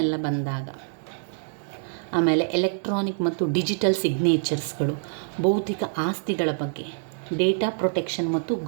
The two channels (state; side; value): silent; left; digital silence